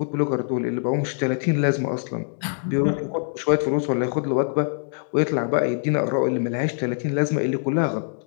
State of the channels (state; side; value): silent; right; digital silence